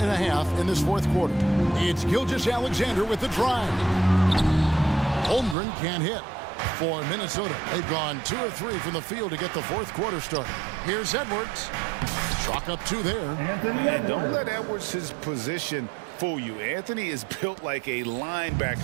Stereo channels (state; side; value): drops out; left; at 5.6 s